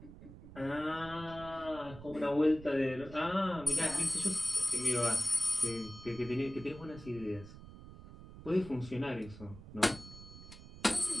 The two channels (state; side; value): noise; right; rumble, 16 dB below the sound